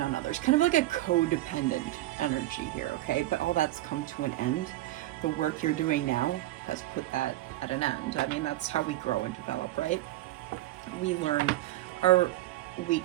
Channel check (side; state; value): left; quieter; 16.3 dB